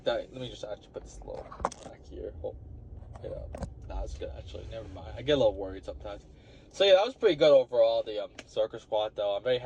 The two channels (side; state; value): both; identical; correlation 1.00